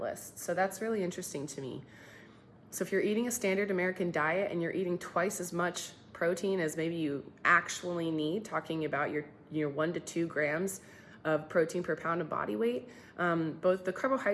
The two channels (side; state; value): both; identical; correlation 1.00